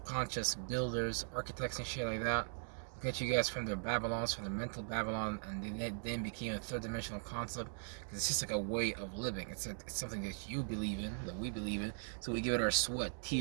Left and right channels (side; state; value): left; silent; digital silence